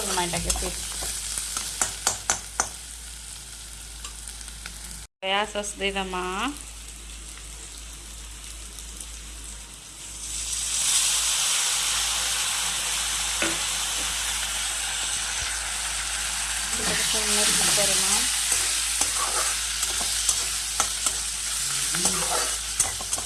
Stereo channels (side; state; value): both; identical; correlation 1.00